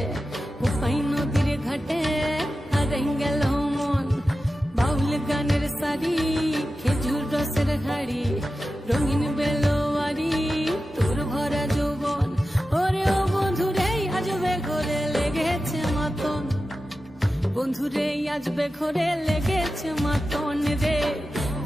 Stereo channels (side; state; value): both; normal; correlation 0.93